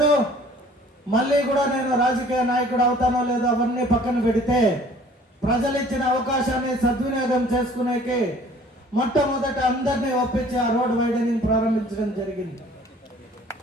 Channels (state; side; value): normal; both; correlation 0.53